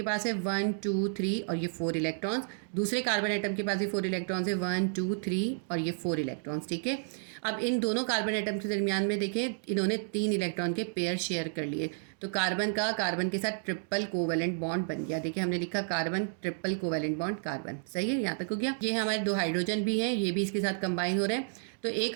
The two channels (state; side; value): silent; left; digital silence